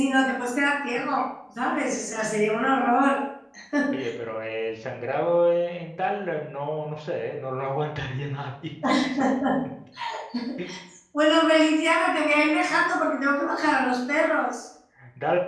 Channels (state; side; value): identical; both; correlation 1.00